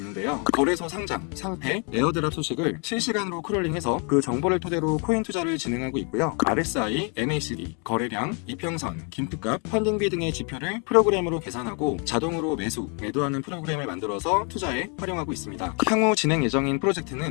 거래소 상장, 상패, 에어드랍 소식을 실시간으로 크롤링해서 그 정보를 토대로 코인 투자를 진행하고 있고요. RSI, MACD, 거래량, 이평선, 김프값, 펀딩비 등의 지표를 프로그램으로 계산하고 자동으로 매도하는 프로그램을 만들어서 투자에 활용하고 있습니다. 향후 진행 예정인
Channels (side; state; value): right; quieter; 37.0 dB